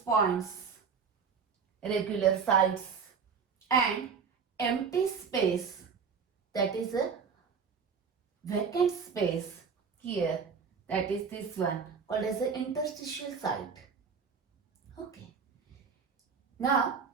points, regular sites, and empty space, that is a vacant space here, that is this one called as the interstitial site. Okay. Now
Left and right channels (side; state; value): left; quieter; 6.0 dB